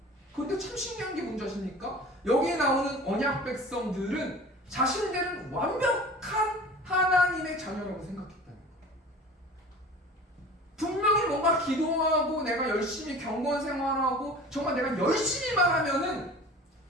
그런데 참 신기한 게 뭔지 아십니까? 여기에 나오는 언약 백성들은 자신들은 완벽한 하나님의 자녀라고 생각했다는 거예요. 분명히 뭔가 기도하고 내가 열심히 경건 생활하고 정말 내가 열심히만 하면은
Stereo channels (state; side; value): normal; both; correlation 0.40